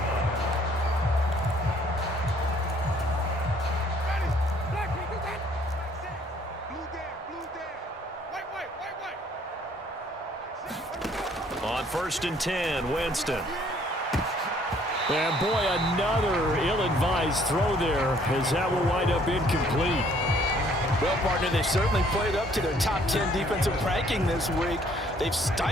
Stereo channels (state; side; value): normal; both; correlation 0.62